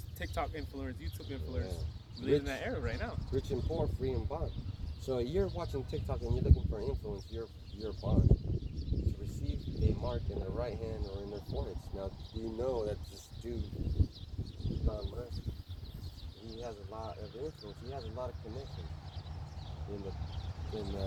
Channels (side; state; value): both; identical; correlation 1.00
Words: TikTok influencers, YouTube influencers. Yeah. We live in that era right now. Rich and poor, free and bond. So you're watching TikTok and you're looking for influence, you're bond to receive a mark in their right hand or in their foreheads. Now, do you know that this dude, Elon Musk, he has a lot of influence. He has a lot of connections in